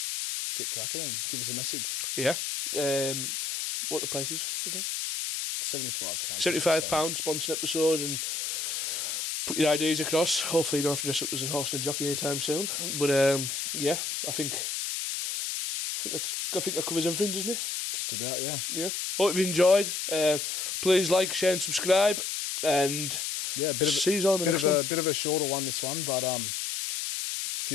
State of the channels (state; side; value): noise; left; hiss, 2 dB below the sound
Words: get cracking and give us a message. Yeah. What the price is again? £75. £75, sponsor an episode and put your ideas across. Hopefully you don't have to dress up as a horse and a jockey anytime soon. But yeah, I think that covers everything, doesn't it? Just about, yeah. Yeah. Hope you've enjoyed. Please like, share and subscribe. And yeah, see you on the next one. A bit of a shorter one, this one, but a